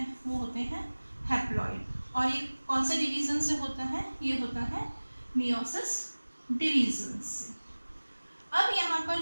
वो होते हैं हैप्लॉइड। और ये कौन से डिवीजन से होता है? ये होता है मियोसिस डिवीजन से। अब यहाँ पर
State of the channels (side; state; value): both; inverted; correlation -1.00